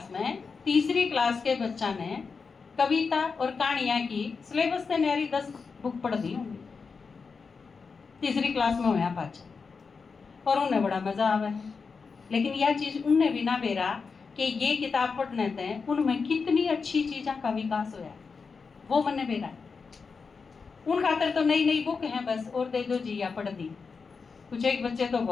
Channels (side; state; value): right; quieter; 5.1 dB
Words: में 3री क्लास के बच्चा ने कविता और कहानियां की सिलेबस से न्यारी 10 बुक पढ़ दी होंगी, 3री क्लास में होया पाचा, और उन्हें बड़ा मजा आवा है। लेकिन यह चीज उनने भी ना बेरा कि ये किताब पढ़ने थे उनमें कितनी अच्छी चीज़ों का विकास होया, वो मैंने बेरा। उन खातर तो नई नई बुक हैं बस, और दे दो जी या पढ़ दी, कुछ एक बच्चे तो